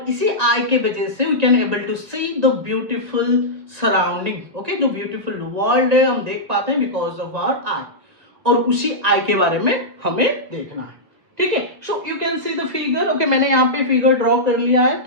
इसी आई के वजह से we can able to see the beautiful surrounding. Okay, जो ब्यूटीफुल वर्ल्ड है हम देख पाते हैं बिकॉज ऑफ आवर आई, और उसी आई के बारे में हमें देखना है। ठीक है, so you can see the figure. Okay, मैंने यहाँ पे फिगर ड्रॉ कर लिया है,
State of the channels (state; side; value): late; left; 1.6 ms